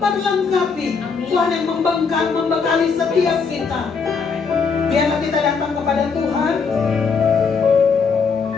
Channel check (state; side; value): quieter; right; 5.3 dB